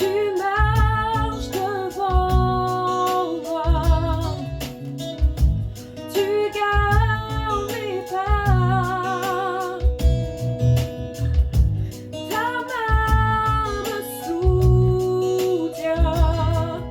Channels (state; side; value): identical; both; correlation 1.00